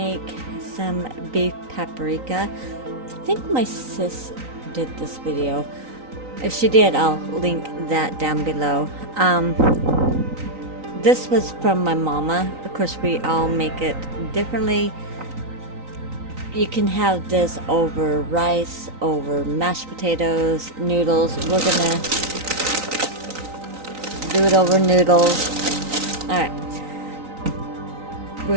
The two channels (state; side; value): late; left; 3.9 ms